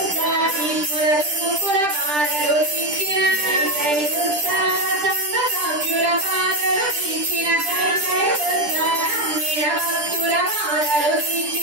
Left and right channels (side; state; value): left; late; 10 ms